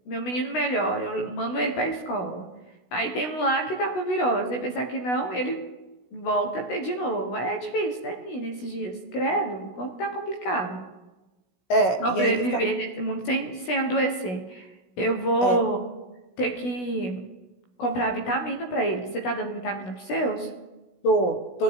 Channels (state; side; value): late; right; 16 ms